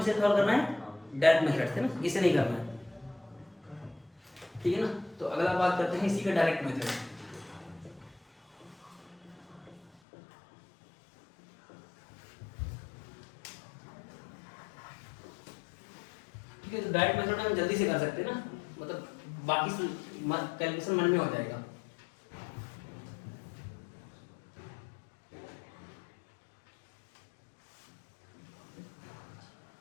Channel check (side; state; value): right; drops out; at 9.9 s